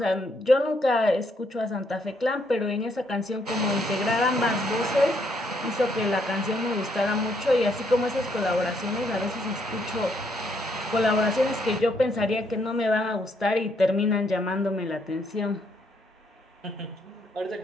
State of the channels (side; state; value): both; normal; correlation 0.72